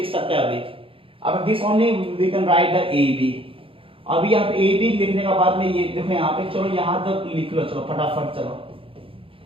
सकते हैं अभी। अब this only we can write the A B. अभी यहाँ पे ए बी लिखने के बाद में ये देखो यहाँ पे, चलो यहाँ तक लिख लो, चलो फटाफट चलो।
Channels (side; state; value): left; late; 0.26 ms